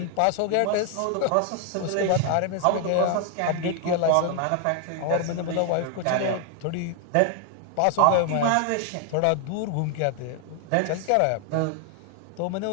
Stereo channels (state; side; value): different; both; correlation 0.00